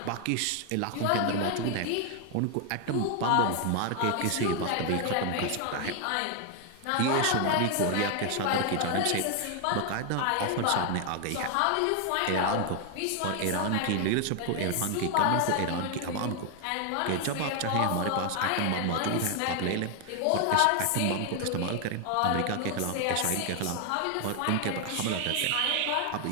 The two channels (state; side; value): different; both; correlation 0.00